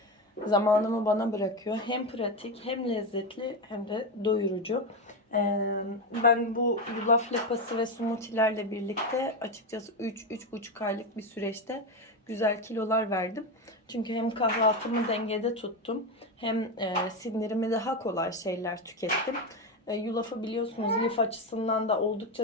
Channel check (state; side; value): normal; both; correlation 0.14